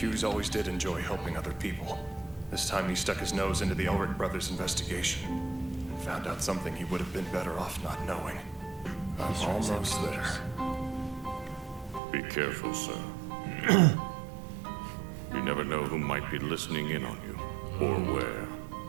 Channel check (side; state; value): left; drops out; at 12.0 s